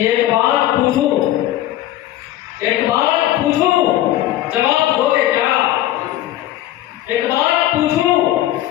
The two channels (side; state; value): right; quieter; 14.3 dB